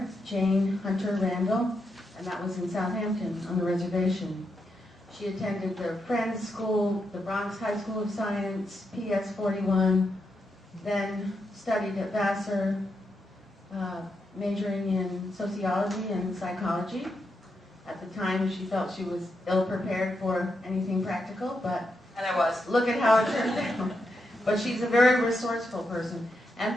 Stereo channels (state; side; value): normal; both; correlation 0.84